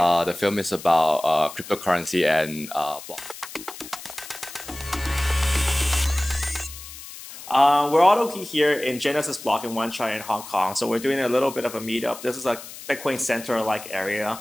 The film is about cryptocurrency and block. We're all here in Genesis Block in Wan Chai in Hong Kong. So we're doing a little bit of a meetup. This is a Bitcoin Center-like area.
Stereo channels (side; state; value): left; noise; hiss, 14 dB below the sound